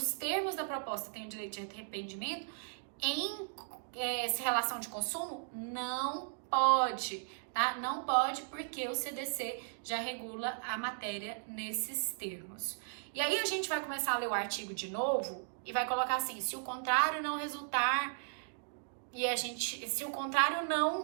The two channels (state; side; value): silent; left; digital silence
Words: termos da proposta tem o direito de arrependimento, em relação de consumo, não pode, tá? Não pode porque o CDC já regula a matéria nesses termos. E aí a gente vai começar a ler o artigo de novo e vai colocar assim, se o contrário não resultar, se o contrário